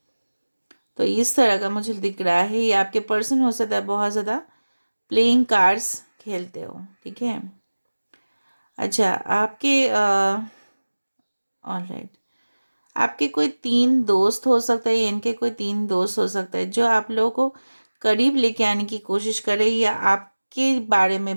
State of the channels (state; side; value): inverted; both; correlation -1.00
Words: तो इस तरह का मुझे दिख रहा है। ये आपके पर्सन हो सकता है बहुत ज़्यादा प्लेइंग कार्ड्स खेलते हो, ठीक है। अच्छा, आपके ऑलराइट, आपके कोई तीन दोस्त हो सकता है, इनके कोई तीन दोस्त हो सकता है जो आप लोगों को करीब लेके आने की कोशिश कर रहे हैं, या आपके बारे